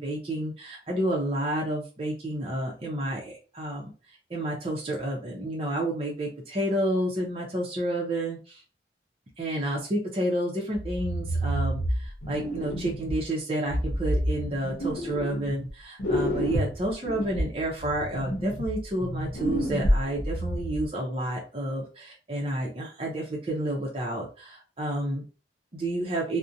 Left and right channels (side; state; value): both; normal; correlation 0.67